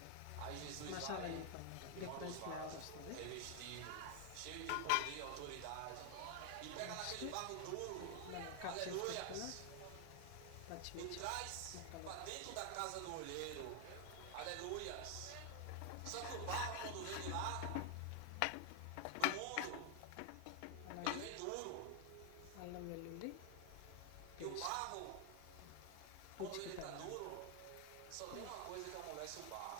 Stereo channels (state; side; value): different; both; correlation 0.00